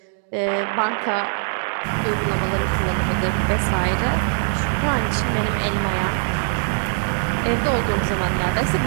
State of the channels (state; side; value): silent; left; digital silence